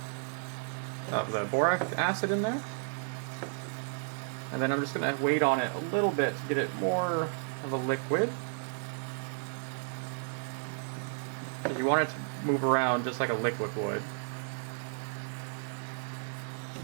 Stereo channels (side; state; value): left; silent; digital silence